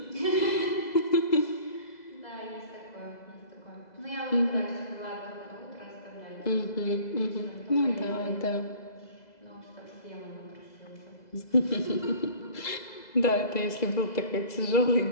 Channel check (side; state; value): right; late; 2.0 ms